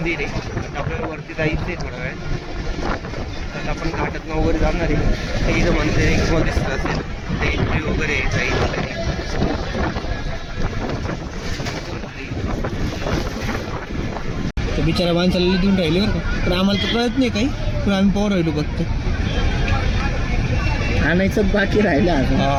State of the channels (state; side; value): identical; both; correlation 1.00